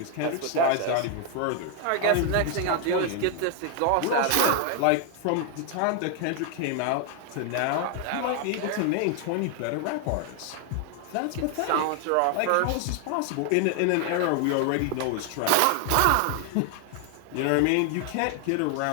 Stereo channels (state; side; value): different; both; correlation 0.00